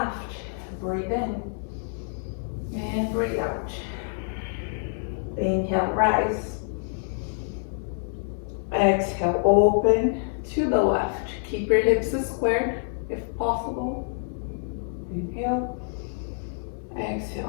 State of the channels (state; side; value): silent; right; 60 dB below the other